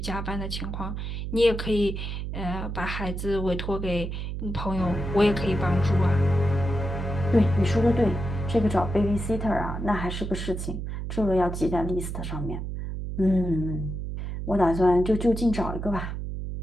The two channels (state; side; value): noise; right; hum, 5 dB below the sound